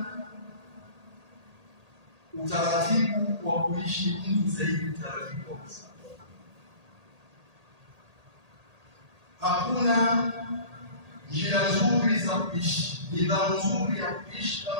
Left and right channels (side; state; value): left; late; 1.8 ms